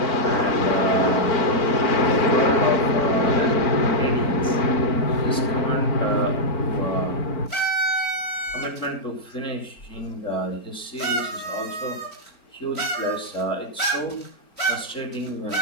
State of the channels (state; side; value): late; right; 4.3 ms